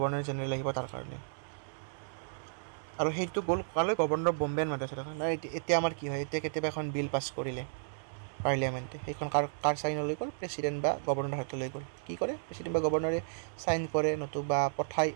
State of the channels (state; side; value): silent; left; 56 dB below the other